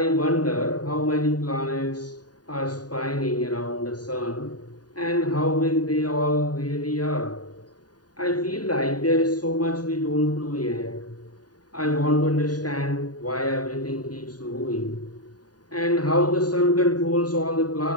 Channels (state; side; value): late; right; 0.68 ms